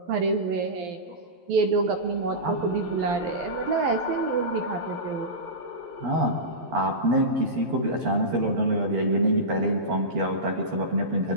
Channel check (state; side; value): late; left; 12 ms